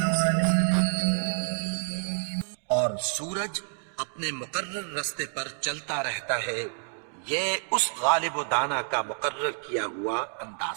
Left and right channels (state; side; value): silent; left; digital silence